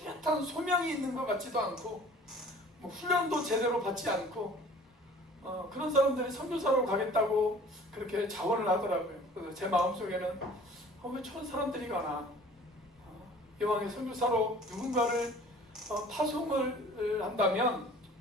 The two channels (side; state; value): both; normal; correlation 0.48